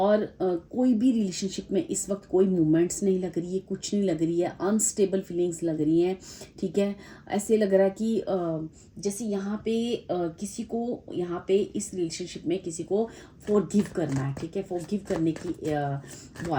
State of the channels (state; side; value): identical; both; correlation 1.00